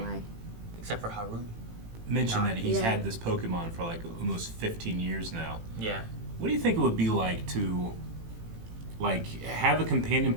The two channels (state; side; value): late; left; 18 ms